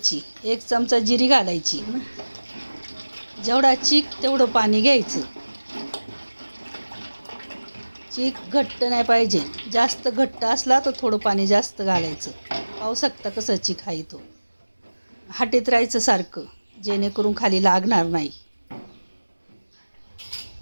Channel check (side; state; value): both; inverted; correlation -1.00